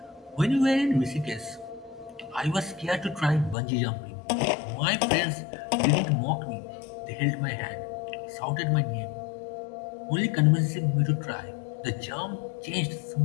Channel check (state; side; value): drops out; right; at 3.6 s